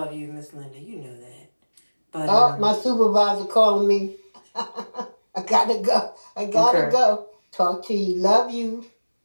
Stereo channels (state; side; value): inverted; both; correlation -1.00